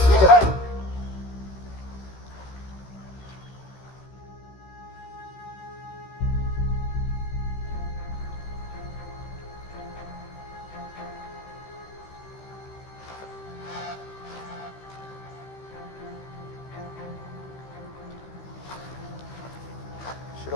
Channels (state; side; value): late; right; 15 ms